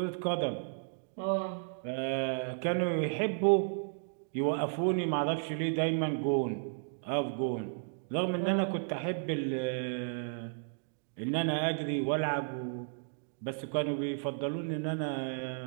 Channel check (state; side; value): silent; left; digital silence